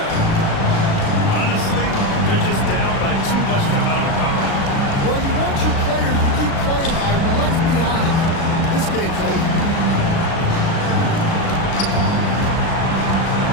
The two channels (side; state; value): right; late; 36 ms